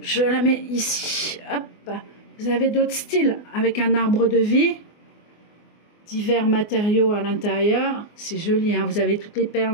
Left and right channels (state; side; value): late; right; 24 ms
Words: la mets ici. Hop. Vous avez d'autres styles avec un arbre de vie. Divers matériaux à l'intérieur, c'est joli, hein. Vous avez toutes les